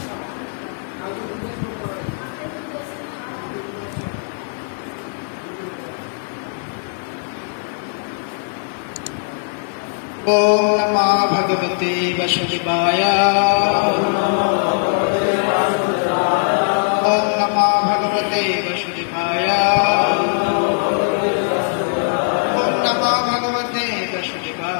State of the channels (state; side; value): silent; right; digital silence